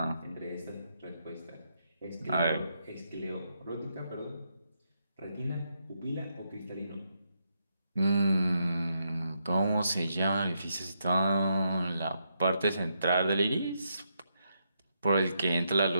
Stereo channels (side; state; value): both; inverted; correlation -0.80